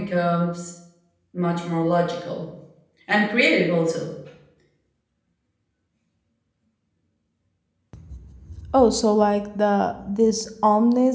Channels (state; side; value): identical; both; correlation 1.00